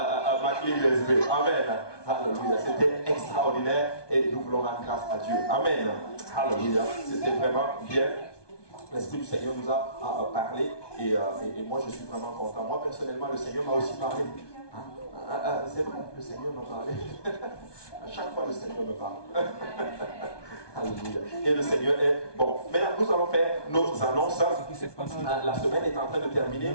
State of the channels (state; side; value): late; right; 1.2 ms